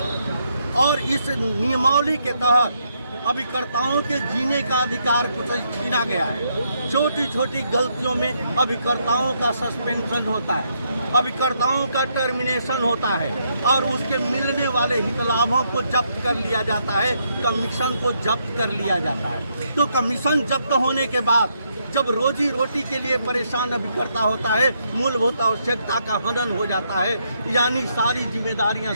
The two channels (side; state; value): both; inverted; correlation -0.76